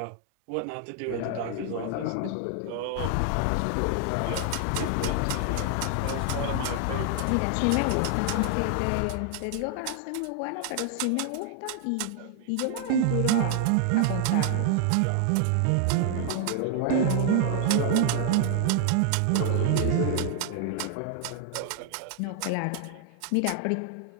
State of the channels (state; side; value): different; both; correlation 0.00